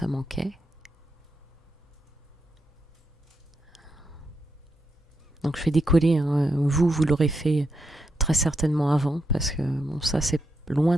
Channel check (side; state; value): both; normal; correlation 0.83